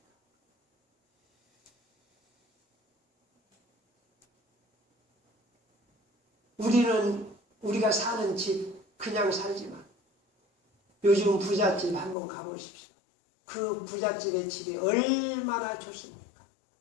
우리가 사는 집 그냥 살지만 요즘 부잣집 한번 가보십시오. 그 부잣집의 집이 얼마나 좋습니까?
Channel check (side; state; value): right; drops out; at 12.2 s